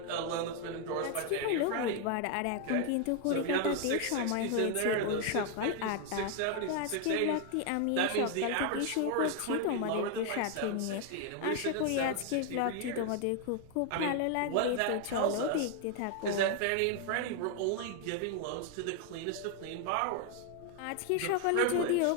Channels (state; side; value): different; both; correlation 0.00